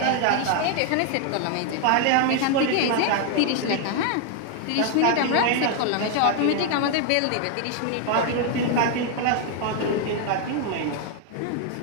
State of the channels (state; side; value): different; both; correlation 0.01